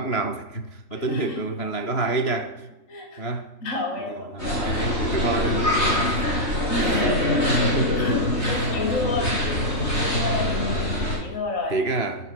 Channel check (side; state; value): right; late; 3.2 ms